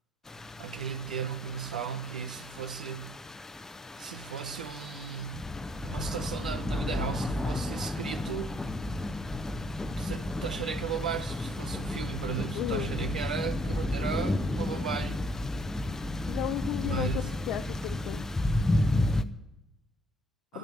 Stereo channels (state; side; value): normal; both; correlation 0.66